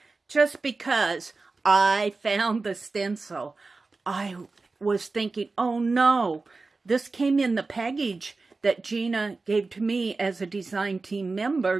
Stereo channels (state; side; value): quieter; left; 3.8 dB